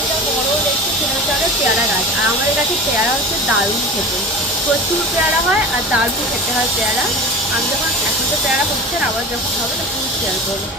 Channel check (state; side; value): normal; both; correlation 0.33